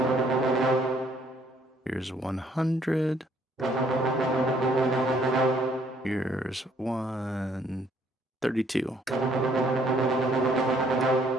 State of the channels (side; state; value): both; normal; correlation 0.65